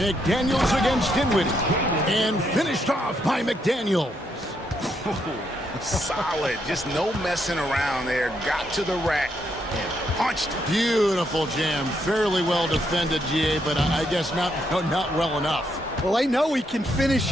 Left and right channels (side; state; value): both; normal; correlation 0.77